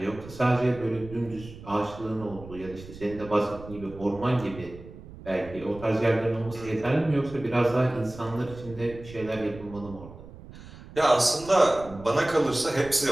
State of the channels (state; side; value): noise; right; rumble, 16 dB below the sound